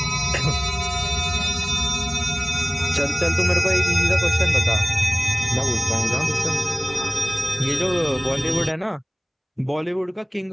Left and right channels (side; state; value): both; identical; correlation 1.00